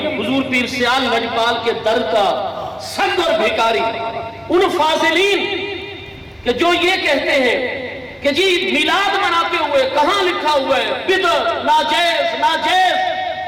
حضور پیر سیال لجپال کے در کا سنگ اور بھیکاری، ان فاضلین کہ جو یہ کہتے ہیں کہ جی میلاد مناتے ہوئے کہاں لکھا ہوا ہے بدعت، ناجائز ناجائز۔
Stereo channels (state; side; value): identical; both; correlation 1.00